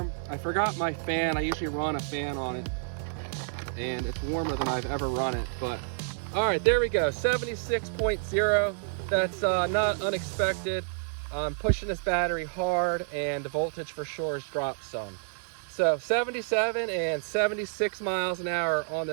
I forgot my fan. I usually run a fan on it, and it's warmer than I've ever run it. But all right, there we go, 76.0. That's not unexpected. I'm pushing this battery hard, and the voltage for sure has dropped some. So 77 and 76 miles an hour on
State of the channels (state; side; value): silent; left; 58 dB below the other